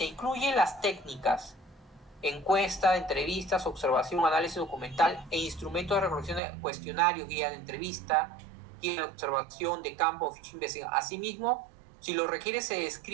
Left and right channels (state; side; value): drops out; left; at 6.4 s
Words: incluye las técnicas, encuesta, entrevistas, observación, análisis documental e instrumentos de recolección de cuestionarios, guía de entrevista, guía de observación de campo, ficha de investigación. Asimismo, si lo requiere, se